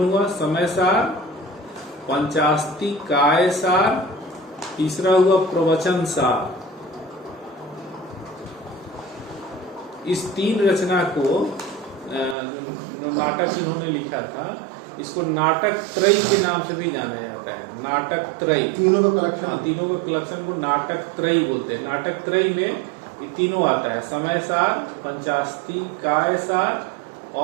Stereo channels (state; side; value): drops out; left; at 12.4 s